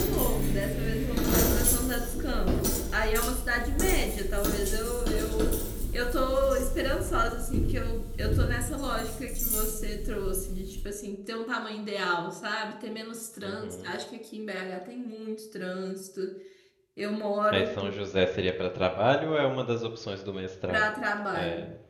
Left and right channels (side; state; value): both; identical; correlation 1.00